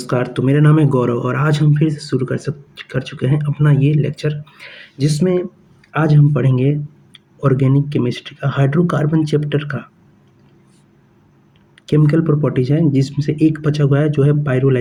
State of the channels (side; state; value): both; identical; correlation 1.00